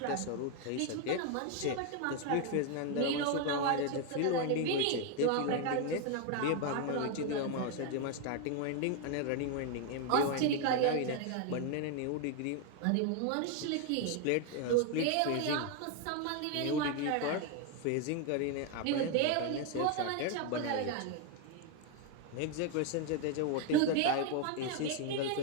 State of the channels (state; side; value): different; both; correlation 0.01